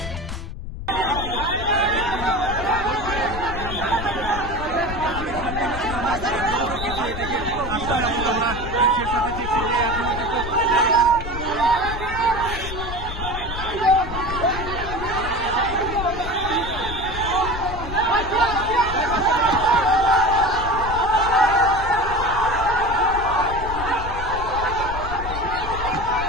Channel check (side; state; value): left; noise; rumble, 8 dB below the sound